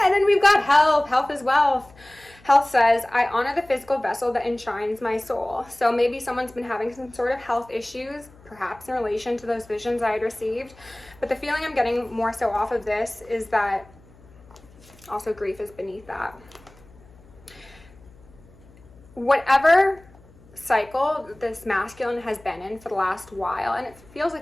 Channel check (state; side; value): noise; left; hum, 25 dB below the sound